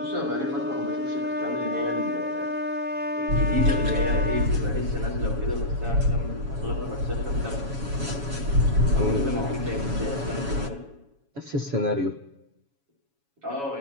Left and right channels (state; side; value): late; left; 7.1 ms